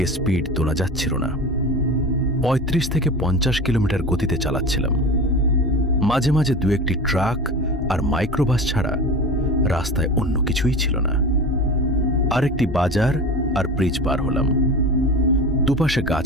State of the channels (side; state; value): both; normal; correlation 0.31